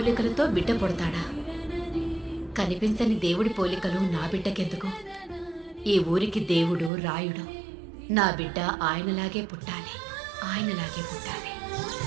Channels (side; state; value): left; drops out; at 6.9 s